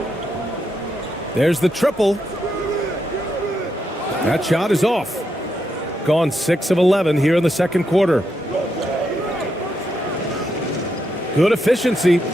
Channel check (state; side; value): normal; both; correlation 0.82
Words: There's the triple. That shot is off. Gone 6 of 11 here in the second quarter. Good efficiency.